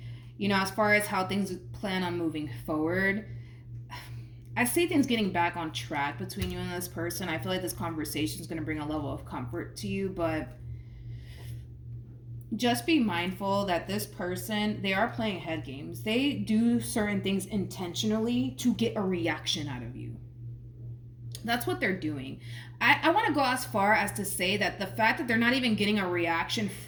You know, as far as how things plan on moving forward, I see things getting back on track between you and this person. I feel like this conversation is going to bring a level of comfort to you, but just be mindful that this person, they are playing head games. They do certain things intentionally to get a reaction out of you. That's what they're doing. I want to go as far as to say that the fact that they're not even getting a reaction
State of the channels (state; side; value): identical; both; correlation 1.00